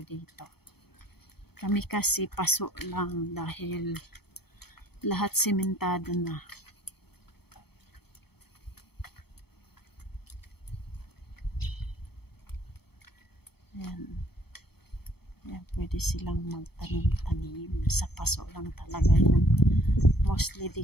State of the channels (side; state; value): right; late; 0.96 ms